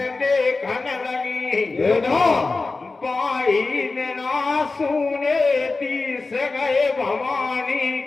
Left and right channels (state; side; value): quieter; right; 3.7 dB